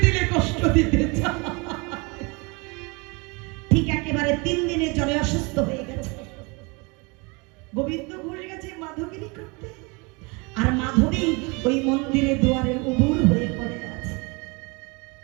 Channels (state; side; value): quieter; left; 28.8 dB